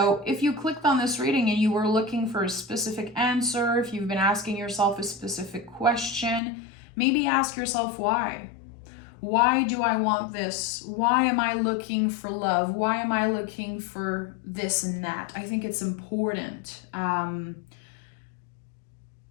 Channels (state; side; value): drops out; right; at 6.4 s